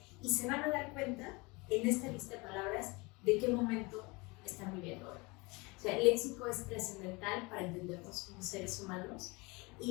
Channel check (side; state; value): right; quieter; 26.2 dB